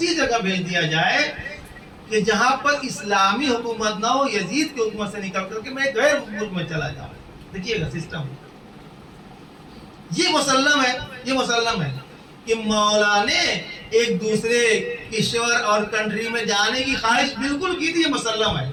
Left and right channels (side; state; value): both; identical; correlation 1.00